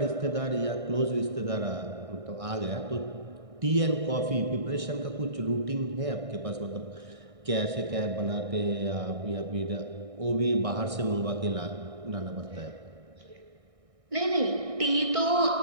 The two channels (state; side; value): late; left; 1.6 ms